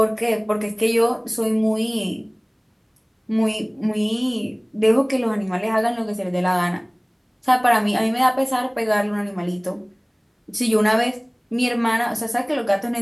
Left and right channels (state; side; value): identical; both; correlation 1.00